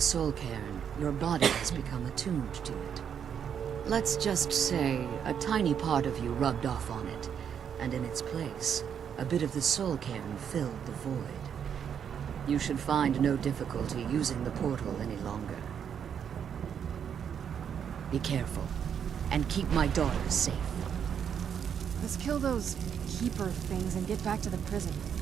Soul Cairn, your body has become attuned to it. Let's just say a tiny part of you rubbed off on it, and in its place, a bit of the Soul Cairn filled the void. You should find no difficulty using the portal any longer. Be careful, and keep my daughter safe. Let's kill those keeper things and get back to the prison.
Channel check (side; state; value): left; quieter; 8.0 dB